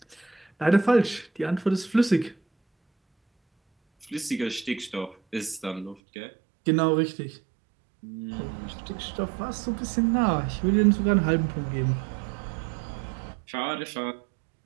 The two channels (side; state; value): left; drops out; at 6.0 s